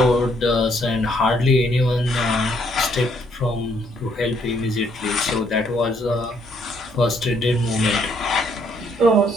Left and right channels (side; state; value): both; normal; correlation 0.69